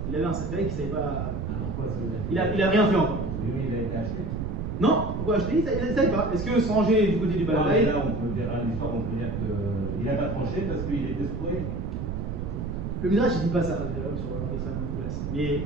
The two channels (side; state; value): right; noise; rumble, 4 dB below the sound